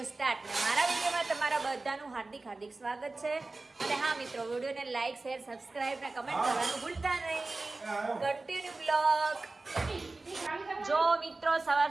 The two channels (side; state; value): left; quieter; 3.3 dB